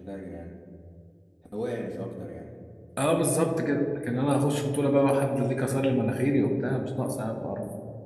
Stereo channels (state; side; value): identical; both; correlation 1.00